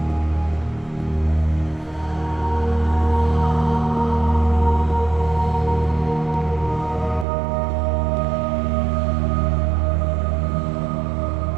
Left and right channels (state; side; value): drops out; left; at 7.2 s